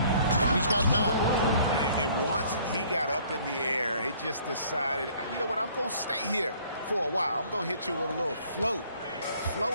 He's got 9. And once he got up in the air, he just decided, you know what, I'm going to stay here for a while. I'm going to hit you with a little float.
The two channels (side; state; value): both; inverted; correlation -0.57